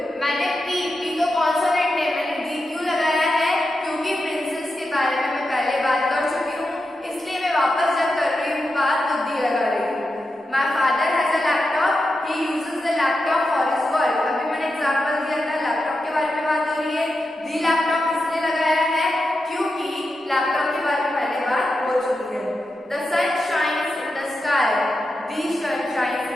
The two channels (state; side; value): normal; both; correlation 0.89